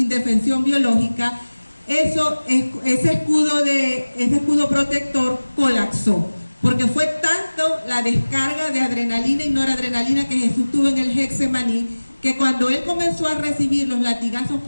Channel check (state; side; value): inverted; both; correlation -1.00